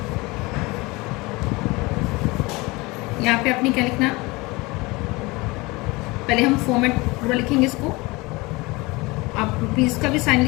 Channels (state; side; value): quieter; right; 23.5 dB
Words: यहाँ पे अपनी क्या लिखना? पहले हम फॉर्मेट पूरा लिखेंगे इसको। आप रुपीज का भी साइन